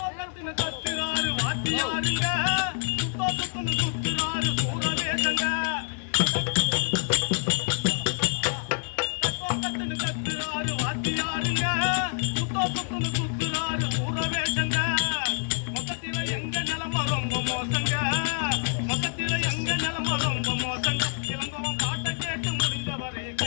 கத்துறாரு வாத்தியாருங்க சுத்துறாரு சூரவேசங்க கத்துறாரு வாத்தியாருங்க சுத்துறாரு சூரவேசங்க மொத்தத்தில எங்க நிலம ரொம்ப மோசங்க மொத்தத்தில எங்க நிலம ரொம்ப மோசங்க இளங்கோவன் பாட்டை கேட்டு முடிந்தவரை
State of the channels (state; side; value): silent; right; 60 dB below the other